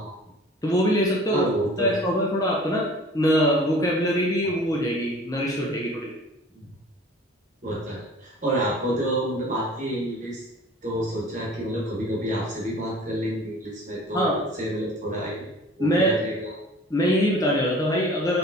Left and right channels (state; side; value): normal; both; correlation 0.46